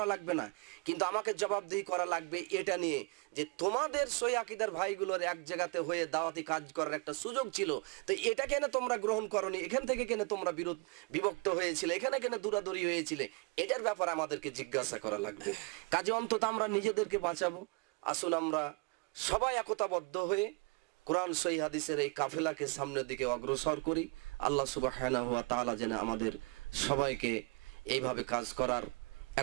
লাগবে না, কিন্তু আমাকে জবাবদিহি করা লাগবে এটা নিয়ে যে তোমাদের সই আকীদার ভাইগুলোর এক জায়গাতে হয়ে দাওয়াতি কাজ করার একটা সুযোগ ছিল, তো এটা কেন তোমরা গ্রহণ করনি? এখান থেকে কেন তোমরা বিভক্ত হয়েছিলে? এখানে কেন দূরাদূরি হয়েছিলে? এটার ব্যাপারে আমাদেরকে জিজ্ঞাসা করা লাগবে। কাজে অন্তত আমরা নিজেদেরকে বাঁচাবো। আসুন আমরা সবাই একতাবদ্ধ হয়ে কোরআন সহিহ হাদিসের এই কাফেলাকে সামনের দিকে অগ্রসর করি। আল্লাহ সুবহানাহু ওয়া তাআলা যেন আমাদের সবাইকে এইভাবে কাজ করার,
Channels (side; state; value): left; quieter; 29.1 dB